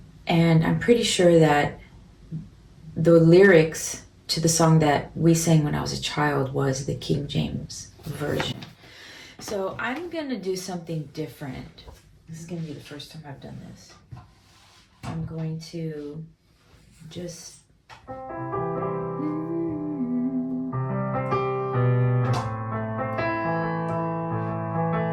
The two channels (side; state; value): both; identical; correlation 1.00